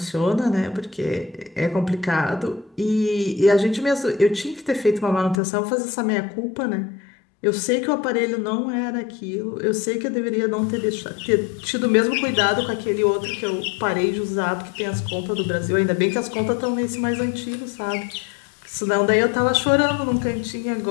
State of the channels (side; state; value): right; drops out; at 5.4 s